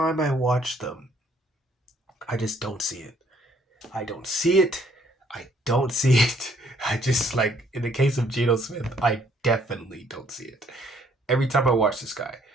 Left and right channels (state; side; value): normal; both; correlation 0.64